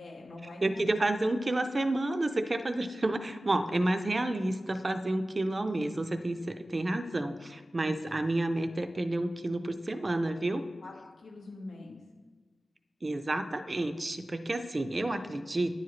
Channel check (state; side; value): normal; both; correlation 0.97